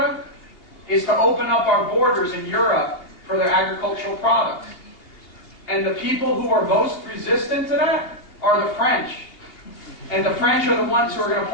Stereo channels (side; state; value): right; late; 2.8 ms